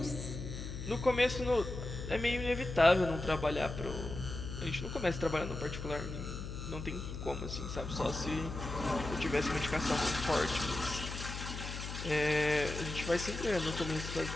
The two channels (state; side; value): noise; left; hum, 7 dB below the sound